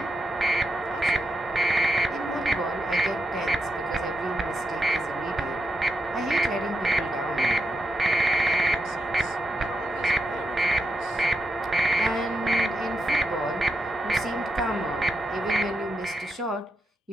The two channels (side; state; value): both; normal; correlation 0.84